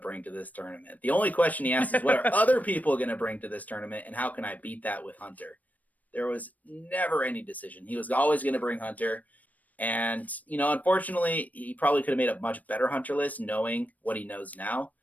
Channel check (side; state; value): right; late; 0.075 ms